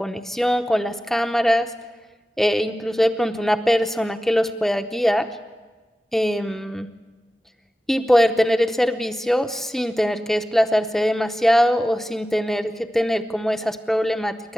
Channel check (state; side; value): normal; both; correlation 0.94